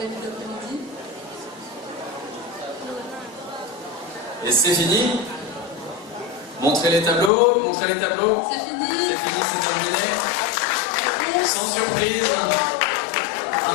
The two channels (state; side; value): drops out; right; at 7.3 s